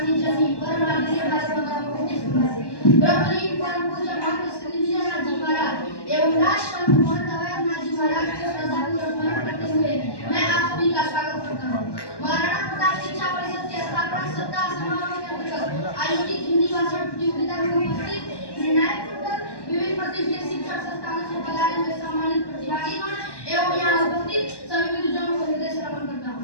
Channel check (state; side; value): late; right; 1.1 ms